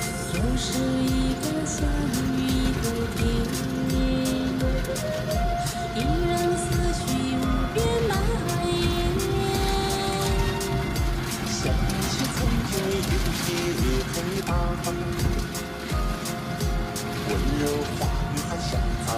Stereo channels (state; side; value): identical; both; correlation 1.00